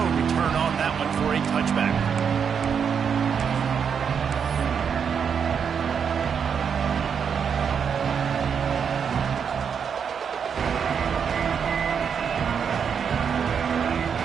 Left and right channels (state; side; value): quieter; left; 7.0 dB